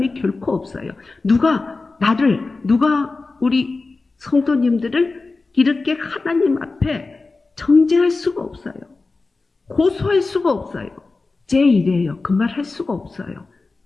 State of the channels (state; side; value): quieter; right; 3.7 dB